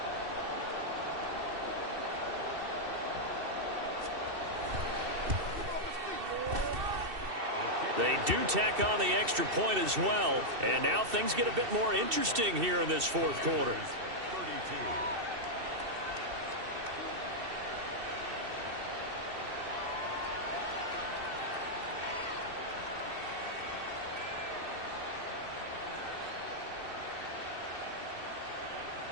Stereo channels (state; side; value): late; left; 2.7 ms